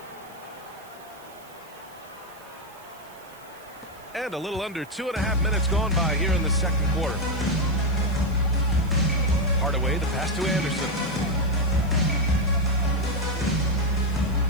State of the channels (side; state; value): right; noise; hiss, 24 dB below the sound